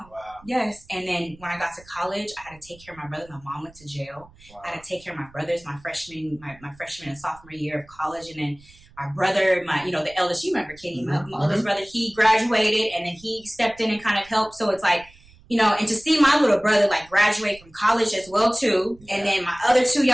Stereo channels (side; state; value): right; noise; rumble, 25 dB below the sound